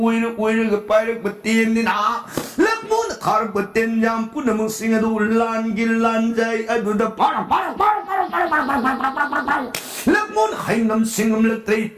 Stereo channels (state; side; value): identical; both; correlation 1.00